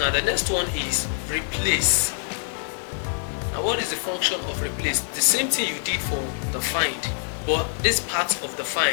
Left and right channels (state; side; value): silent; right; digital silence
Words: the next one is replace. Now what is the function of replace? The same thing you did for the find, but this part of the